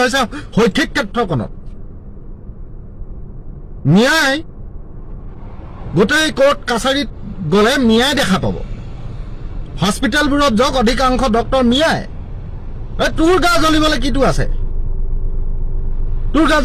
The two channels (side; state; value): both; identical; correlation 1.00